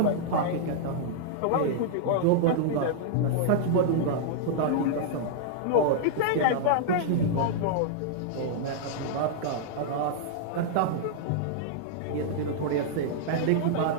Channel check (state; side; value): different; both; correlation -0.01